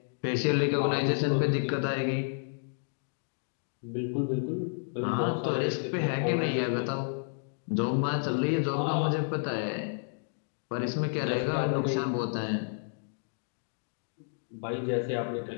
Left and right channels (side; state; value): right; silent; digital silence